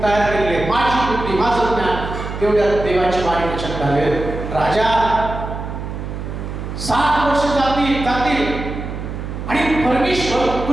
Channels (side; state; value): right; noise; hum, 7 dB below the sound